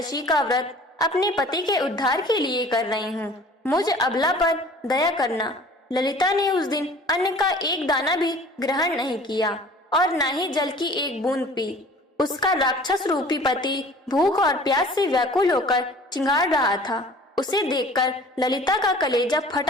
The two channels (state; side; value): normal; both; correlation 0.47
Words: का व्रत अपने पति के उद्धार के लिए कर रही हूँ, मुझ अबला पर दया करना। ललिता ने उस दिन अन्न का एक दाना भी ग्रहण नहीं किया और न ही जल की एक बूंद पी। उसका राक्षस रूपी पति भूख और प्यास से व्याकुल होकर चिंगाड़ रहा था। उसे देखकर ललिता का कलेजा